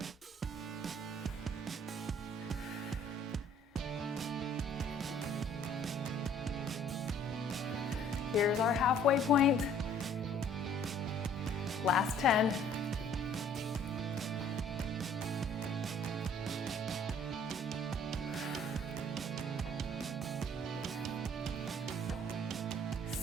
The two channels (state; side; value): normal; both; correlation 0.56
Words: Here's our halfway point. Last 10.